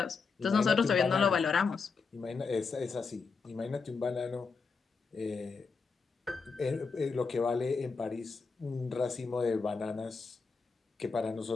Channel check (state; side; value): quieter; right; 4.9 dB